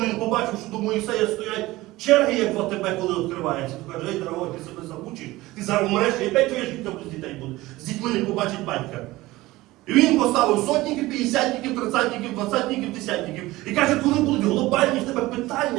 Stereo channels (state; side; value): quieter; left; 18.7 dB